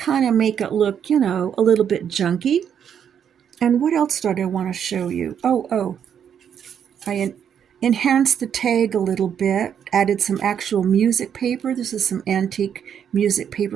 of make it look, you know, a little bit junky. And what else did I want to show you? I enhanced the tag a little bit, added some actual music paper. This is some antique music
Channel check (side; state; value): left; quieter; 8.4 dB